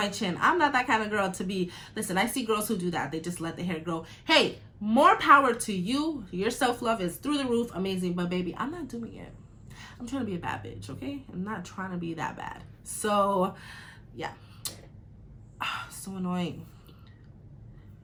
I'm not that kind of girl to be. Listen, I see girls who do that. They just let the hair grow. Hey, more power to you. Your self-love is through the roof. Amazing. But baby, I'm not doing it. I'm trying to be a bad bitch, okay? I'm not trying to be that bad. So, yeah. So annoying.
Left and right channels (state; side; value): identical; both; correlation 1.00